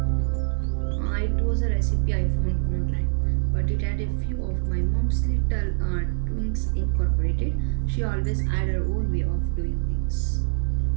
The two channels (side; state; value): left; silent; digital silence